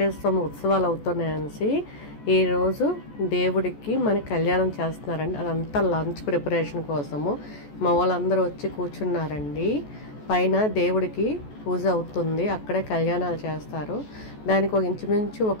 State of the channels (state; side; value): late; right; 14 ms